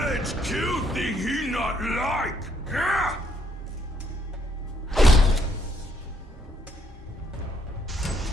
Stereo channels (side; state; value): both; normal; correlation 0.71